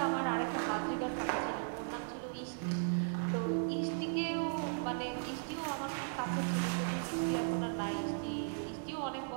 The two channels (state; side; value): silent; left; digital silence